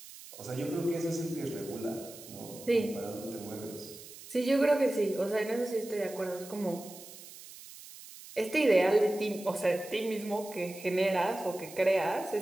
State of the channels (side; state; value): right; noise; hiss, 16 dB below the sound